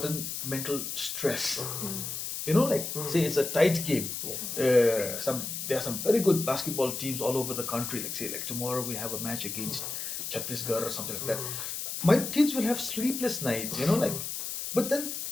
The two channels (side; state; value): left; noise; hiss, 5 dB below the sound